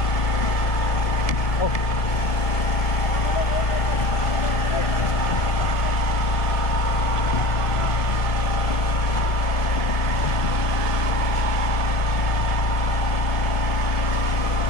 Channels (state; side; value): late; right; 1.9 ms